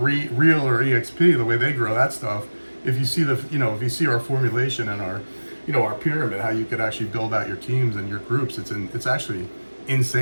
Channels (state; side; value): inverted; both; correlation -1.00